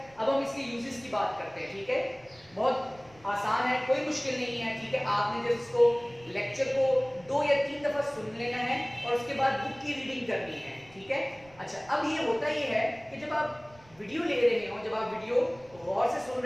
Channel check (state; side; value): noise; right; rumble, 26 dB below the sound